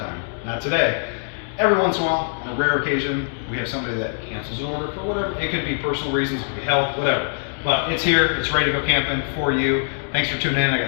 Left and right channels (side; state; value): right; silent; digital silence